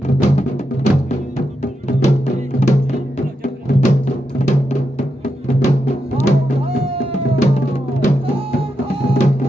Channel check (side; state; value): both; normal; correlation 0.85